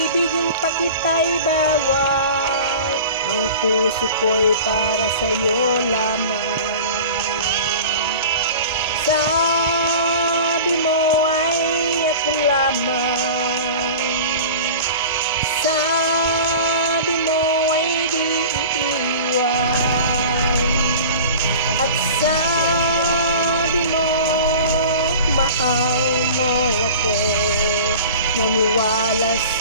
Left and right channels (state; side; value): inverted; both; correlation -0.37